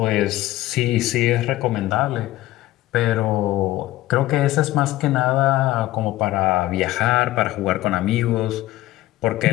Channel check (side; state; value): right; quieter; 16.3 dB